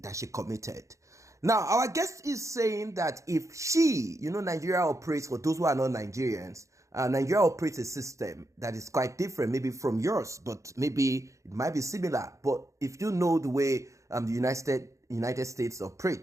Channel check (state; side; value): late; left; 0.15 ms